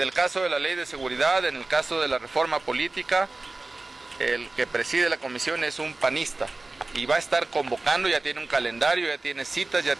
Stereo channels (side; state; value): left; quieter; 3.2 dB